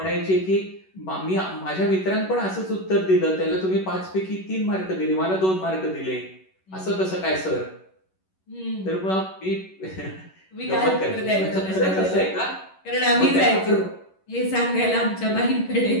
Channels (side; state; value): right; late; 11 ms